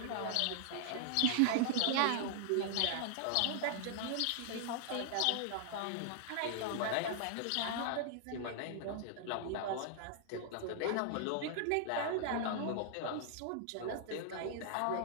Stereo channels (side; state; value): both; different; correlation -0.01